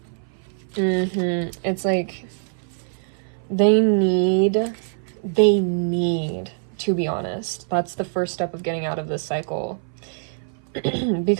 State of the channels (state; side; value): silent; left; 57 dB below the other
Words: It's like they need, to be honest. That's the first step of getting out of this cycle.